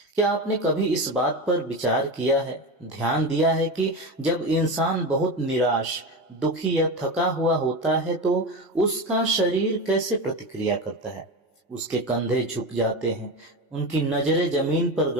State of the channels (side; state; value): both; normal; correlation 0.21